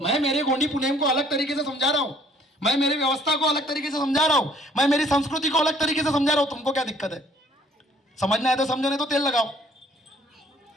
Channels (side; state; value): both; normal; correlation 0.60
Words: मेरे गोंडी पुनेम को अलग तरीके से समझा रहा हूं, मैं मेरी व्यवस्था को अलग तरीके से समझा रहा हूं, मैं मेरी संस्कृति को अलग तरीके से समझा रहा हूं। तुमको क्या दिक्कत है? समझना है तो समझो, नहीं तो तेल लगाओ।